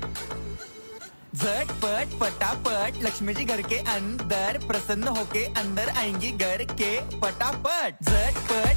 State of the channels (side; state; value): both; inverted; correlation -1.00